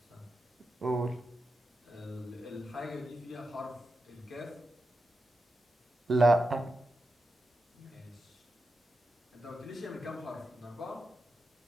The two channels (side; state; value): both; normal; correlation 0.89